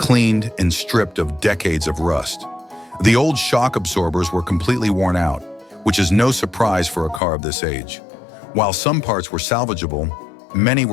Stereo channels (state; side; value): drops out; right; at 7.2 s